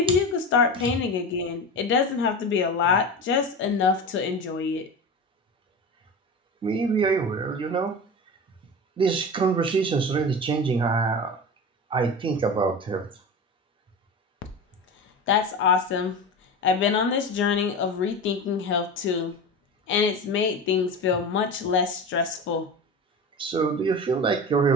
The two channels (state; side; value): normal; both; correlation 0.27